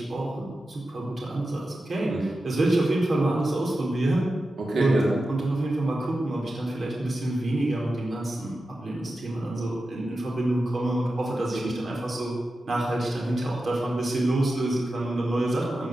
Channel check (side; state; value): both; normal; correlation 0.92